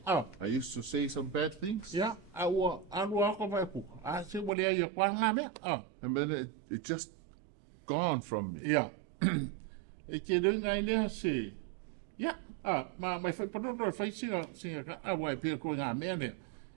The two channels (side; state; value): left; drops out; at 4.5 s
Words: I used to say some bad things. Ia, aua ako vai kuka. A se wale ai a kwa ngā mea. And then it just gone from me. Ia. E ke runga i lea se. Ia, ma mai whai panono e whai singa ka awa e pia koe ngā mea nea.